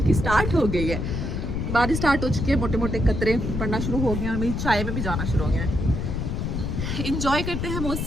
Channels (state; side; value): noise; left; rumble, 2 dB below the sound